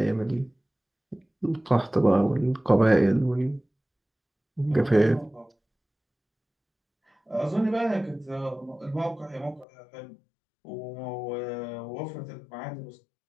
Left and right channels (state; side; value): drops out; right; at 9.7 s